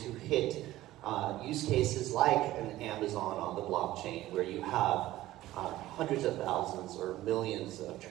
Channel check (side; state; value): left; quieter; 15.7 dB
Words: hit use cases like an Amazon on the blockchain, where you have hundreds of thousands or millions of